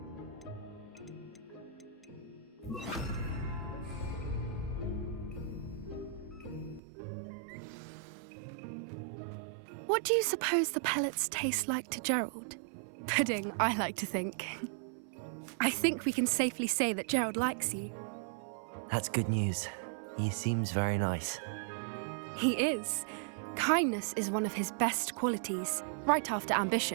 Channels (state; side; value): drops out; left; at 6.8 s